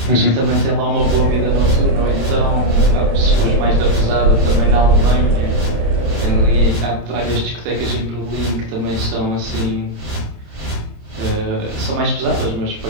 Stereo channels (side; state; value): left; late; 27 ms